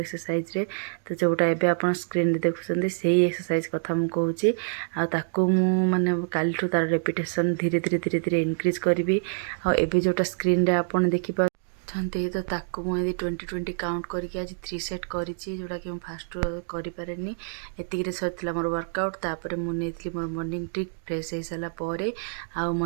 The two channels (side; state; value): left; silent; digital silence